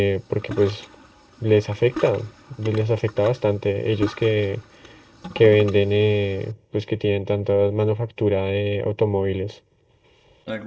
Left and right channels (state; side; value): identical; both; correlation 1.00